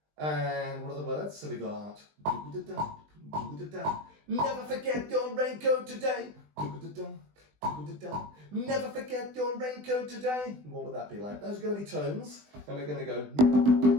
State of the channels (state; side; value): late; left; 20 ms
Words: And what are the words? So we got do-da-da, do-da-da. Never forget your raincoat today. Do-da-da, do-da-da. Never forget your raincoat today. What would that be like? Those are going to be tones, and we're going to go